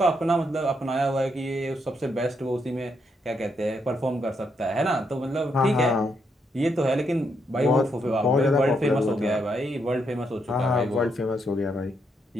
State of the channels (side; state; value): both; normal; correlation 0.78